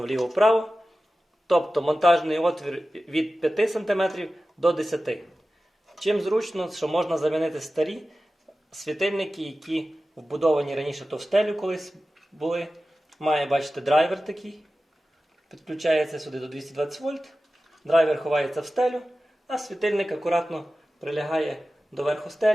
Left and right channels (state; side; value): normal; both; correlation 0.95